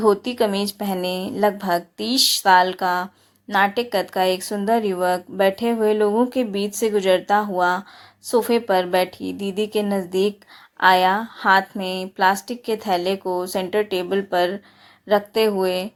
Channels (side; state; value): both; identical; correlation 1.00